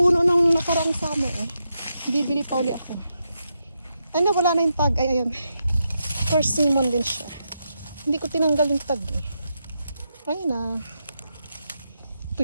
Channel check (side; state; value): both; inverted; correlation -0.84